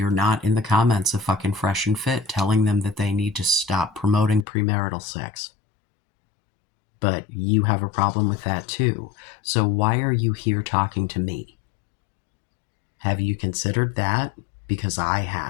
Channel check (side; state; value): right; drops out; at 4.5 s